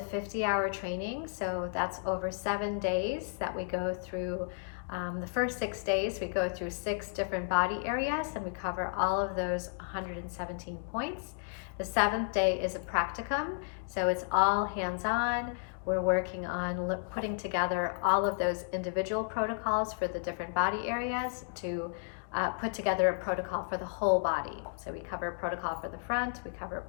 training, so that's over 7 days that we go through. The first 6 days, we go through 6 different body areas, and we cover all of those 117 points. The 7th day is a practicum, so it's all hands-on. We're working on putting together all of those individual protocols for the different body areas to put together a protocol for the whole body. So we cover a protocol for the front, we cover a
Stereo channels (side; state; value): right; silent; digital silence